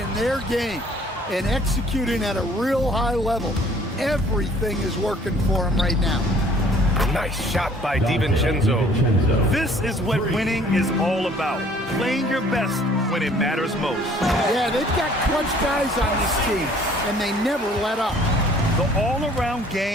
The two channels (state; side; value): normal; both; correlation 0.56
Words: their game and executing at a real high level. Everything is working for them right now. Nice shot by DiVincenzo. This is what winning is all about. Playing your best when it matters most. Yeah, they've got clutch guys on this team, and they never let up. The all-around